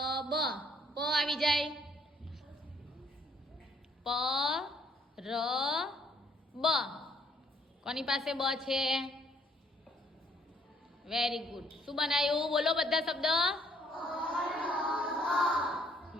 પ આવી જાય. પરબ. કોની પાસે બ છે? Very good. શું બનાવ્યું? બોલો બધા શબ્દ.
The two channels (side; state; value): both; normal; correlation 0.65